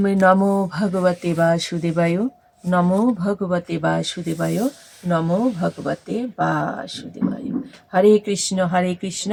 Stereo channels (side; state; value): both; identical; correlation 1.00